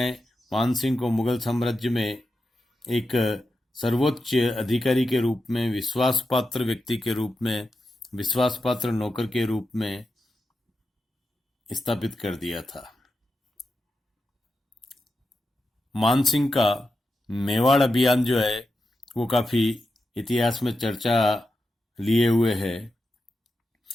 मानसिंह को मुगल साम्राज्य में एक सर्वोच्च अधिकारी के रूप में, विश्वासपात्र व्यक्ति के रूप में, विश्वासपात्र नौकर के रूप में स्थापित कर दिया था। मानसिंह का मेवाड़ अभियान जो है वो काफी इतिहास में चर्चा लिए हुए है।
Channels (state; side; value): normal; both; correlation 0.89